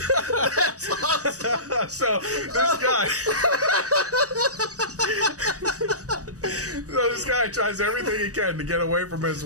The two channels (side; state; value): left; late; 0.66 ms